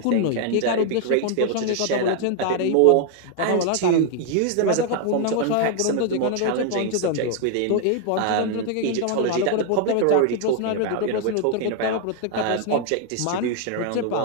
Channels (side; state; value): both; different; correlation 0.00